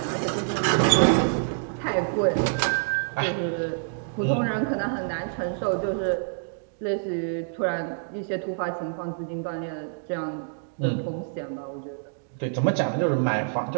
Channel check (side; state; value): left; silent; digital silence